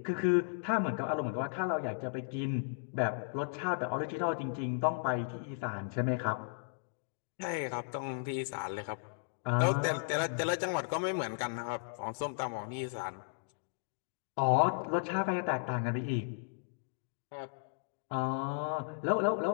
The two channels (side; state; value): right; silent; digital silence